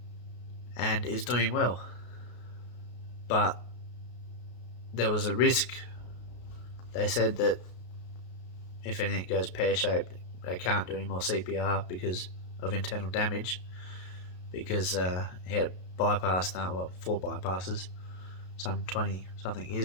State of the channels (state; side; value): late; right; 33 ms